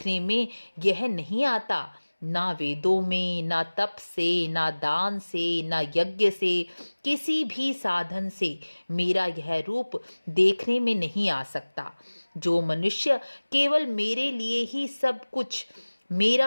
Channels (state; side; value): inverted; both; correlation -1.00